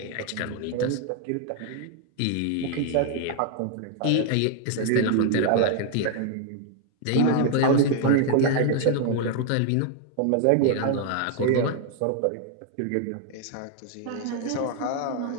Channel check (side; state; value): both; different; correlation 0.00